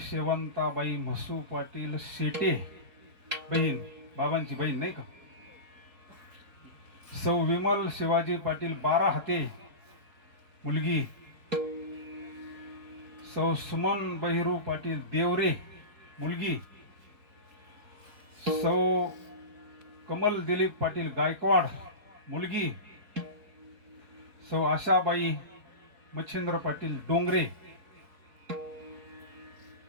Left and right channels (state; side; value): late; left; 4.5 ms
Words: शेवंताबाई म्हसू पाटील शेटे बहीण बाबांची बहीण नाही का सौ विमल शिवाजी पाटील बारा हाते मुलगी सौ सुमन बहिरू पाटील देवरे मुलगी सौ कमल दिलीप पाटील गायकवाड मुलगी सौ आशाबाई मच्छिंद्र पाटील डोंगरे